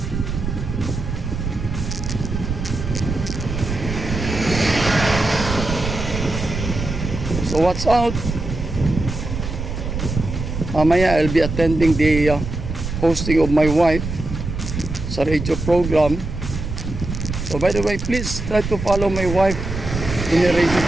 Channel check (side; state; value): right; noise; rumble, 5 dB below the sound